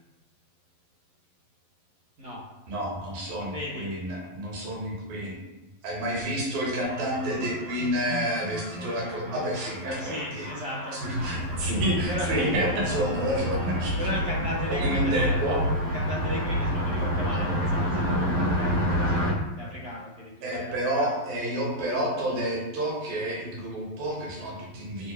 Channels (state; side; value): late; left; 11 ms